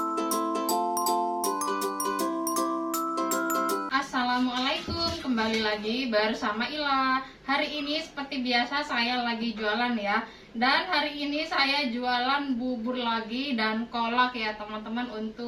Assalamualaikum, kembali lagi bersama Ila. Hari ini seperti biasa saya lagi jualan ya. Dan hari ini saya jualan bubur lagi dan kolak ya teman-teman,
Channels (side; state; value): both; identical; correlation 1.00